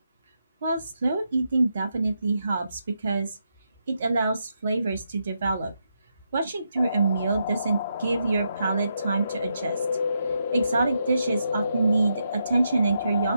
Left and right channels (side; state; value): both; inverted; correlation -0.82